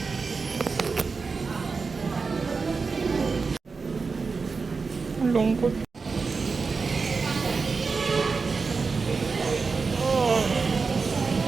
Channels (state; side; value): quieter; left; 4.6 dB